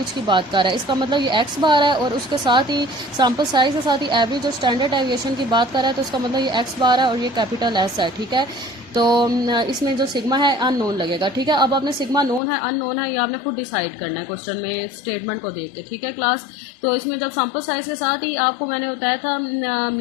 की बात कर रहा है। इसका मतलब ये एक्स बार है, और उसके साथ ही सैम्पल साइज़ के साथ ही एवरेज और स्टैंडर्ड एविएशन की बात कर रहा है, तो इसका मतलब ये एक्स बार है और ये कैपिटल एस है। ठीक है, तो इसमें जो सिग्मा है अननोन लगेगा। ठीक है, अब आपने सिग्मा नोन है अननोन है ये आपने खुद डिसाइड करना है क्वेश्चन में स्टेटमेंट को देख के। ठीक है क्लास, तो इसमें जब सैम्पल साइज़ के साथ ही आपको मैंने बताया था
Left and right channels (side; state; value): right; drops out; at 12.4 s